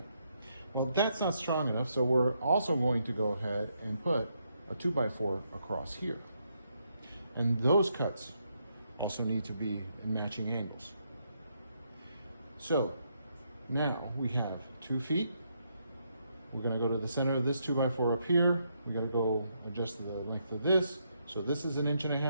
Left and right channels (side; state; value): both; inverted; correlation -0.77